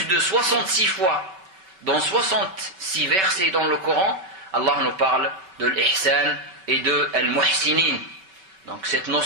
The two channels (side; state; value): left; late; 5.2 ms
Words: de 66 fois, dans 66 versets dans le Coran, Allah nous parle de l'ihsan et de al-muhsinin. Donc cette